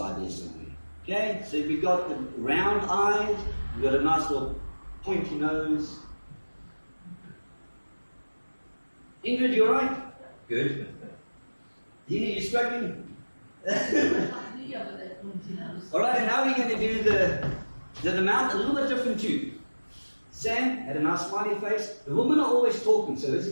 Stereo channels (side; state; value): both; inverted; correlation -1.00